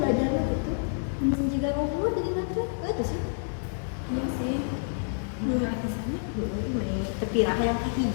belajarnya gitu. Mungkin juga ngobrol jadi nanti. Itu sih. Iya sih. Mulai di sana, mulai terpirah yang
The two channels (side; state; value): right; silent; digital silence